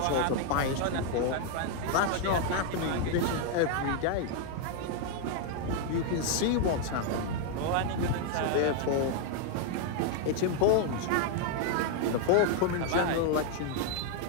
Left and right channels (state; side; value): different; both; correlation 0.00